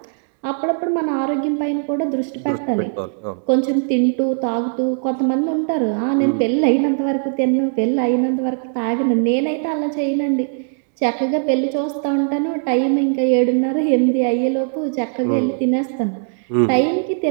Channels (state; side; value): silent; left; digital silence